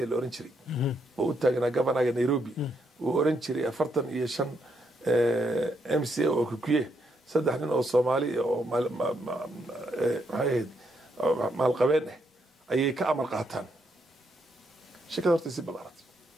la oran jiray oo u taagnaa governorka Nairobi oo oran jiray 45 MCA oo ku kuye saddex nin oo Soomaali oo maal qabeen ayay ka amar qaataan shirkada horta si balaarat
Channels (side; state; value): both; normal; correlation 0.77